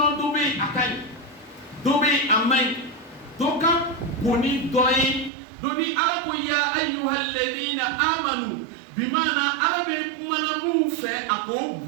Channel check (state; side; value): drops out; left; at 5.3 s